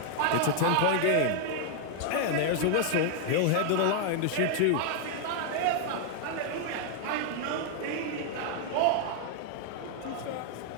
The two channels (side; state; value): both; different; correlation 0.00